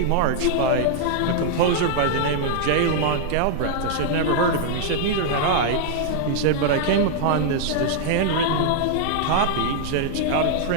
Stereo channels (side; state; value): both; different; correlation -0.01